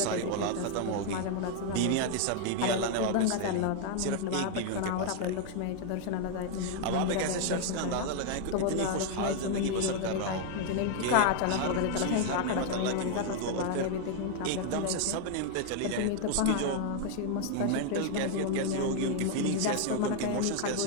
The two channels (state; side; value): different; both; correlation 0.00